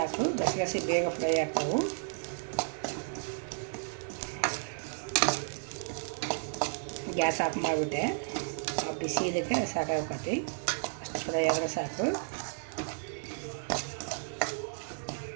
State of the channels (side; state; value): left; silent; 56 dB below the other